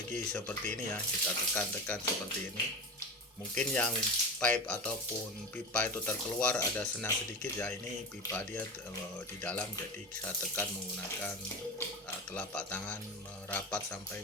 seperti ini ya, kita tekan seperti ini. Mungkin yang pipe ataupun pipa itu terkeluar ada senang sedikit ya, ini pipa dia di dalam, jadi saya tekan menggunakan telapak tangan merapat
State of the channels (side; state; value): both; normal; correlation 0.25